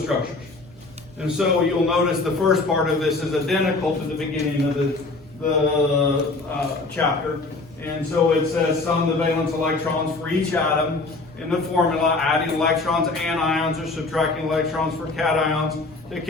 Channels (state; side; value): quieter; right; 3.4 dB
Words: And so you'll notice the first part of this is identical to the beginning of the chapter. And so it says sum the valence electrons for each atom in the formula, adding electrons and ions or subtracting electrons for cations to